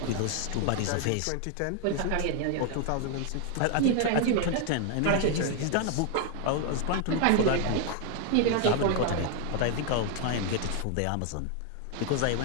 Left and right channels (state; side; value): different; both; correlation 0.00